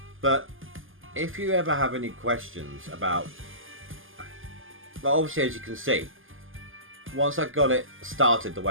but if you ever have any questions about, well, obviously as you can see, once I got it started the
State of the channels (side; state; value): left; late; 0.59 ms